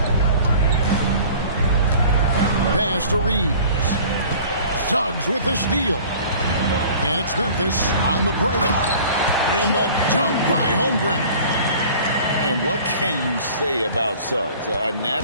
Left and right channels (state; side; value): inverted; both; correlation -0.46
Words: Pass to Reeves. Suggs with the steal. And it's Memphis on the break. And the dunk by Holmgren. And what can you say about Suggs? A